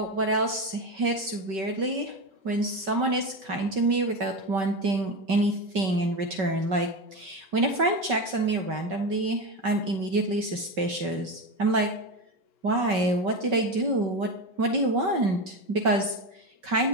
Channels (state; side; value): late; left; 5.2 ms